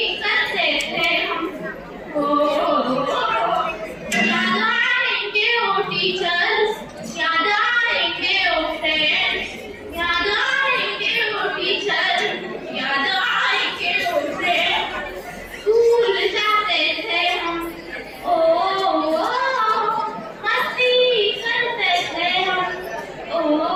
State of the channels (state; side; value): identical; both; correlation 1.00